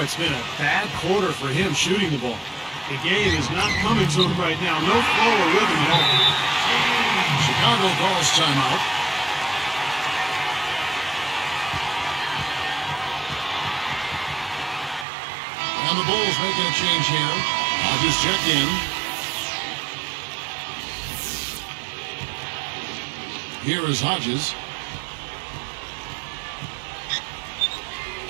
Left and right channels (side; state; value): left; drops out; at 15.1 s